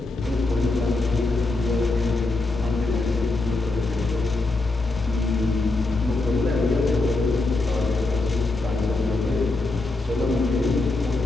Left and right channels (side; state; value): right; quieter; 3.1 dB